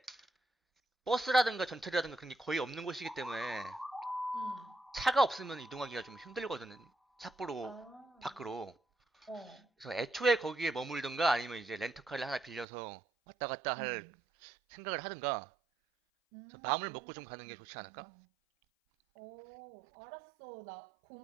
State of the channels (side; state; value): left; drops out; at 12.7 s